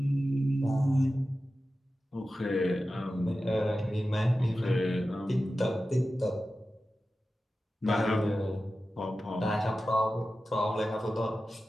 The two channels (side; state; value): both; normal; correlation 0.94